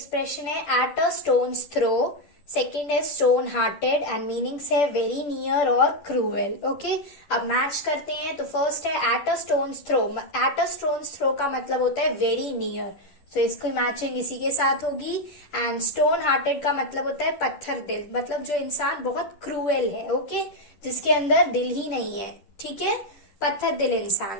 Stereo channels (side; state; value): right; late; 11 ms